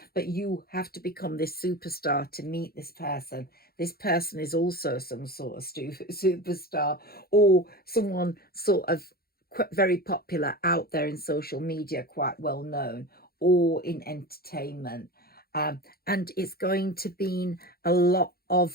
but you have to become this superstar to meet this person. This person is also some sort of superstar, or someone sort of very popular out there in social media, quite well known, or in entertainment. And it's going to be a lot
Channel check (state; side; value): late; right; 0.44 ms